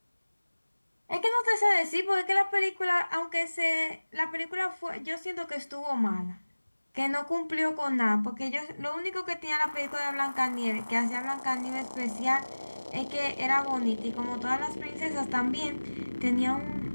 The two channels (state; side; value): inverted; both; correlation -1.00